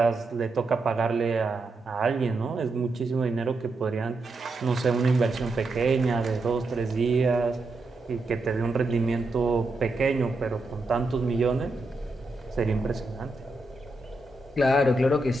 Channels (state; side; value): quieter; left; 3.0 dB